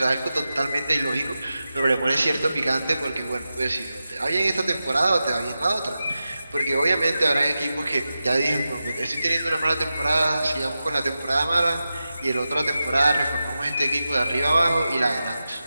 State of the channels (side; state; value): both; inverted; correlation -0.92